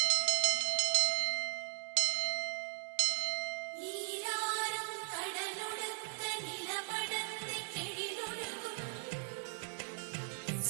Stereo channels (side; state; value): left; silent; 53 dB below the other